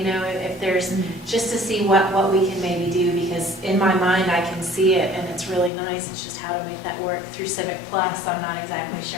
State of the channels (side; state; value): right; drops out; at 5.7 s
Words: there's, just to see what we can maybe do, because in my mind I can see it and it's really nice. It's just how to make that work through Civic Plus. I'm not exactly